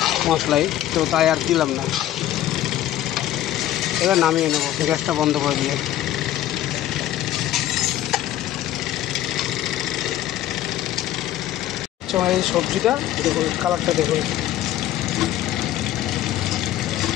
মশলাই, তো তাই আর দিলাম না। এবার নামিয়ে নেব গ্যাসটা বন্ধ করে দিয়ে। এই সবজিটা দেখুন, কালারটা দেখুন।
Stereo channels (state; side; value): quieter; right; 13.1 dB